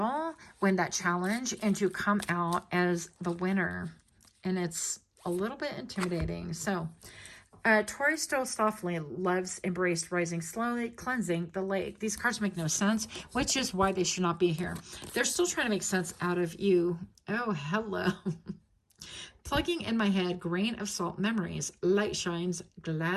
win that challenge, and to come out as the winner. And it's a little bit intimidating. So Tori stole softly, loves embraced, rising slowly, cleansing the lake. These cards make no sense, which is why they should not be here. They're still trying to make sense out of you. Oh, hello. Plugging in my head, grain of salt memories, light shines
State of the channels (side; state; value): both; identical; correlation 1.00